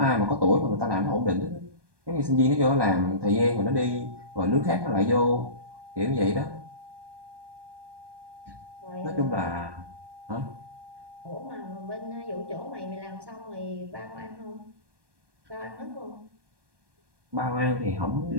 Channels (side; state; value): left; late; 1.2 ms